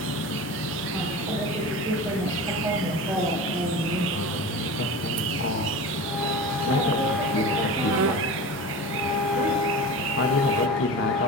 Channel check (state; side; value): normal; both; correlation 0.32